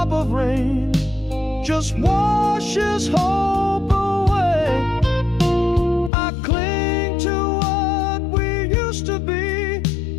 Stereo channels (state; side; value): drops out; right; at 6.1 s